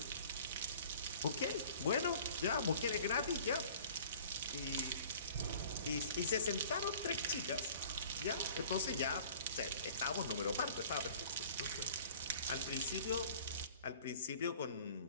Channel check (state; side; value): inverted; both; correlation -0.48